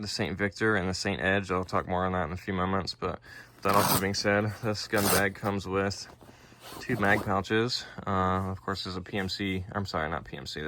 the Saint Victor, and the Saint Edge. I'll talk more on that in a few moments. But with that also being said, this gun bag comes with 2 mag pouches. Of course, there's a PMC. I'm sorry, not PMC.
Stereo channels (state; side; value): identical; both; correlation 1.00